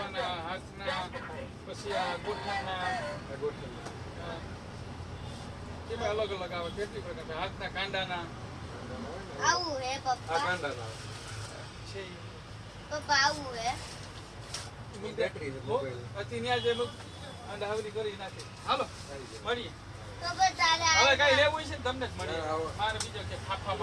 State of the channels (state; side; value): identical; both; correlation 1.00